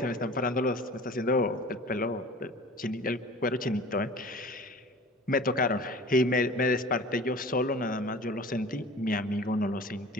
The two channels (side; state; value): both; normal; correlation 0.41